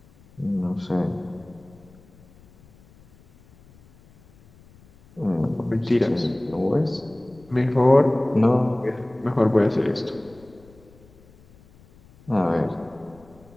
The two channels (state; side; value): noise; left; rumble, 27 dB below the sound